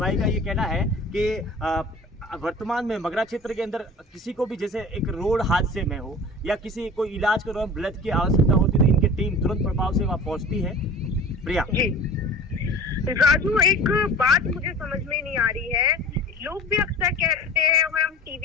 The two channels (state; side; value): normal; both; correlation 0.40